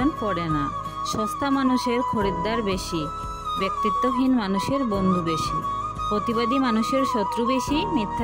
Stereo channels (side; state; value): both; identical; correlation 1.00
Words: পড়ে না। সস্তা মানুষের খরিদ্দার বেশি, ব্যক্তিত্বহীন মানুষের বন্ধু বেশি, প্রতিবাদী মানুষের শত্রু বেশি,